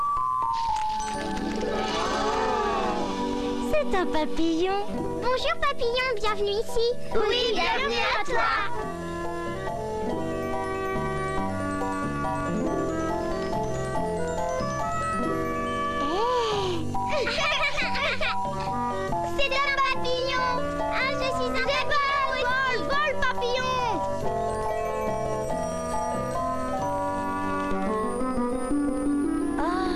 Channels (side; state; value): both; identical; correlation 1.00